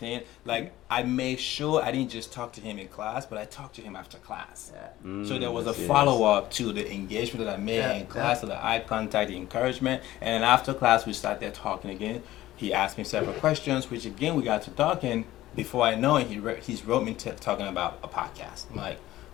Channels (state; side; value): quieter; right; 15.5 dB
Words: like I made sure I didn't just talk to him in class, but I talked to him after class. Yeah. So there was a Yes. follow-up to the engagement that I made in class, to the eye contact, the encouragement, and then after class we sat there talking again. He asked me several questions, which again we got to talking. Before I know it, he's wrote me talking about a podcast. I'm like,